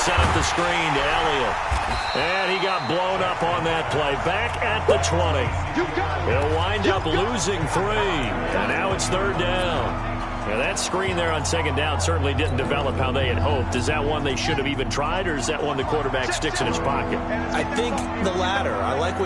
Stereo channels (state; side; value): identical; both; correlation 1.00